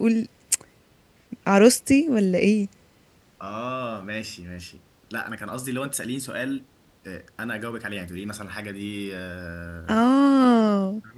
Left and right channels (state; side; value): identical; both; correlation 1.00